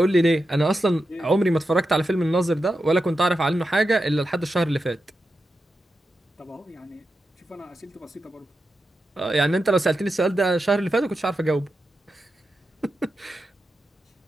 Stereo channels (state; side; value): normal; both; correlation 0.89